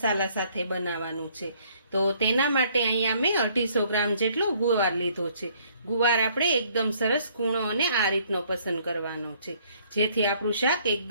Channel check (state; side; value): inverted; both; correlation -0.63